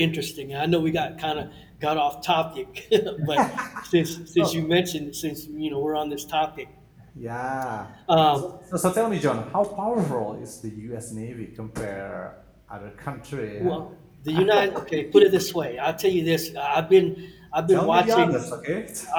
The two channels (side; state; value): both; identical; correlation 1.00